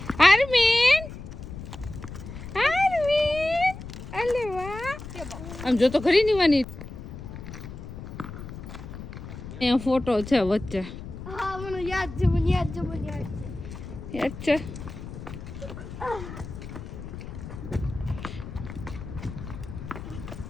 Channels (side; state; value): left; noise; rumble, 11 dB below the sound